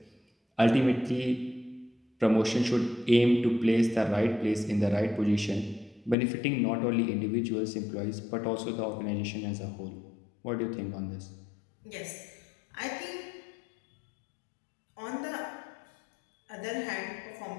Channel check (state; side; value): drops out; right; at 6.2 s